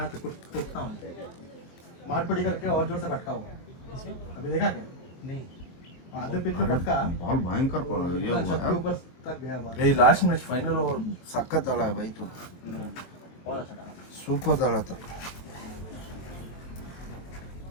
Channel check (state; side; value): late; right; 23 ms